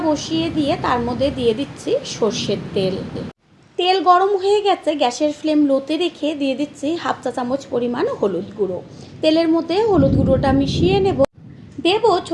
বসিয়ে দিয়ে তার মধ্যে দিয়ে দিচ্ছি সর্ষের তেল। তেল গরম হয়ে গেছে। গ্যাসের ফ্লেম লোতে রেখে দিয়ে দিচ্ছি হাফ চা চামচ পরিমাণ হলুদ গুঁড়ো। তেলের মধ্যে হলুদ গুঁড়োটা মিশিয়ে দেব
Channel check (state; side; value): identical; both; correlation 1.00